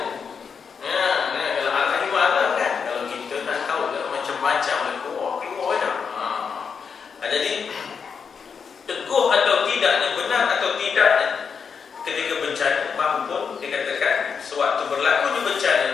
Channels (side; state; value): right; quieter; 6.2 dB